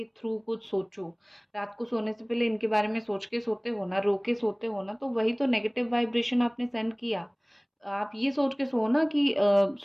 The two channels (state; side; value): identical; both; correlation 1.00